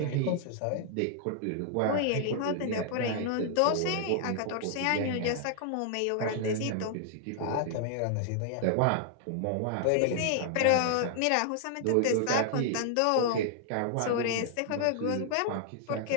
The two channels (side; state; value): both; different; correlation 0.00